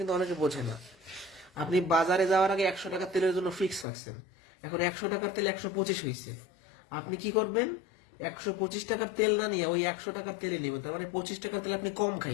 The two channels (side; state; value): right; drops out; at 3.9 s